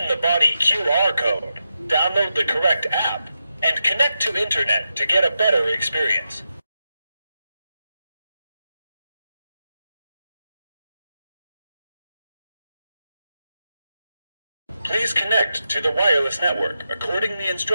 the body QR code, download the correct app, and connect to internet to get a better experience. Please connect to the wireless network according the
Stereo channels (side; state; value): both; inverted; correlation -0.88